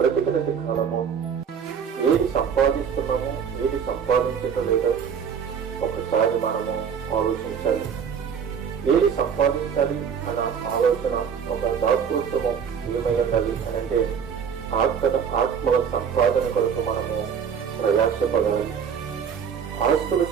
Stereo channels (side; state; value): left; quieter; 7.2 dB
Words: కాలము ఏది సంపాదిస్తున్నామో, ఏది సంపాదించటం లేదో ఒకసారి మనము ఆలోచించాలి. ఏది సంపాదించాలి అన్న ఆలోచన, ఒక దాతృత్వము ఏమై ఉండాలి అని అంటే ఆత్మల సంపాదన కొరకు మనము ప్రయాసపడాలి. ఆస్తుల